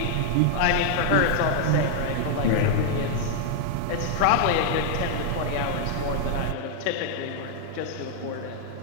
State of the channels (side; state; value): both; different; correlation 0.00